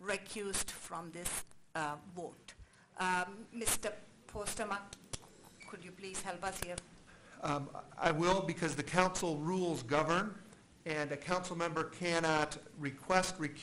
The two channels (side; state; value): both; identical; correlation 1.00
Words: recused from this vote. Mr. Postema, could you please help us here? I will, because the council rules govern, and a council member cannot request